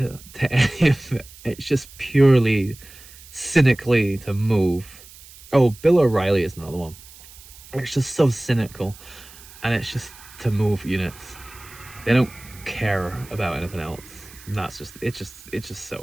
any of it. It's just purely cynically to move. Oh, Bill O'Reilly is another one. It's just so cynical, and it's just to move units. They don't care about anything else. And it's just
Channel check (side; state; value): right; noise; hiss, 20 dB below the sound